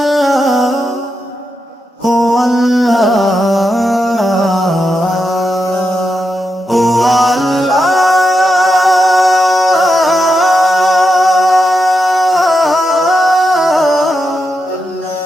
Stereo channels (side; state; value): both; normal; correlation 0.86